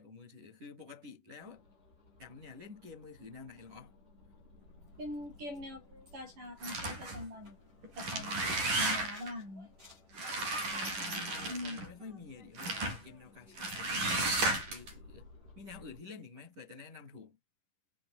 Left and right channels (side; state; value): left; late; 10 ms